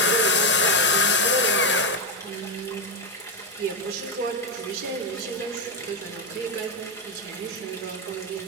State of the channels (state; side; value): normal; both; correlation 0.06